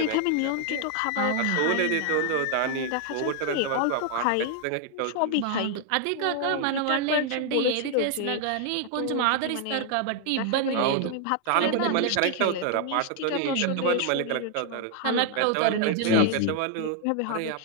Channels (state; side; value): different; both; correlation 0.00